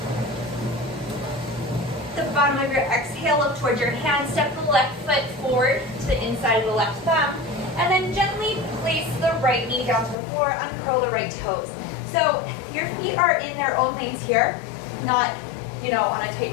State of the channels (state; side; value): drops out; right; at 10.2 s